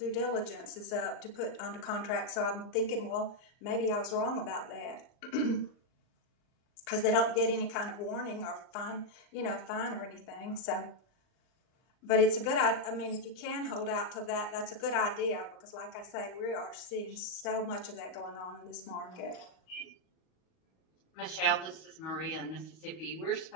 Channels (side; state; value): right; late; 39 ms